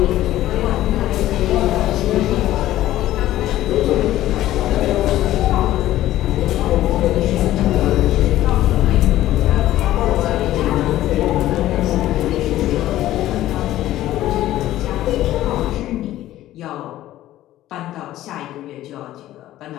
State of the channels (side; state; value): right; quieter; 14.3 dB